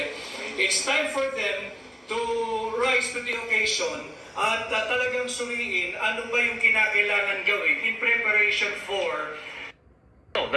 It's time for them to rise to the occasion at talagang suriin ano ba yung kinakailangan gawin in preparation for the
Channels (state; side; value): identical; both; correlation 1.00